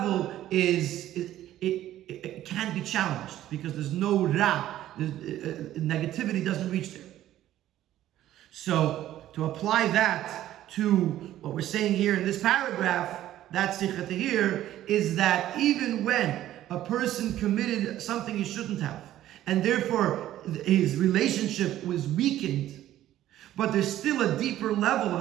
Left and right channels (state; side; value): quieter; left; 13.2 dB